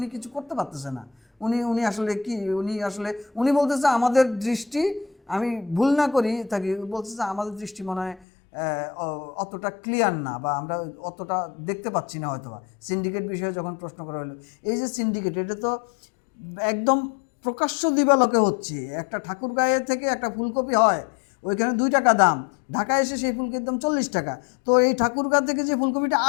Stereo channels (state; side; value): drops out; right; at 8.2 s